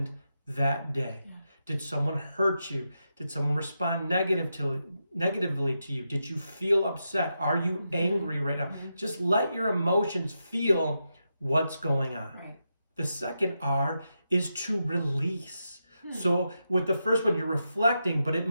that day. Did someone hurt you? Did someone respond negatively to you? Did you feel upset? Are you angry right now? Just let your emotions feel what's going on. The second R is to release. So with the first one, you're reflecting, but it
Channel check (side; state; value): both; inverted; correlation -0.86